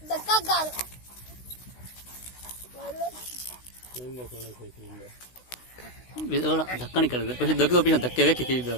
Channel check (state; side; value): late; right; 16 ms